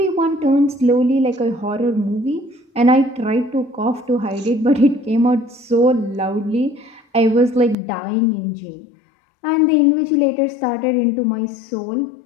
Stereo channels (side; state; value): right; drops out; at 7.8 s